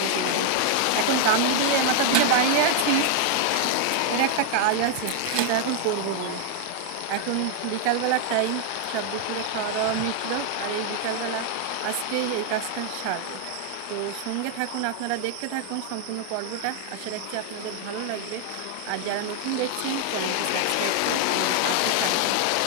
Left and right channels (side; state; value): both; different; correlation 0.00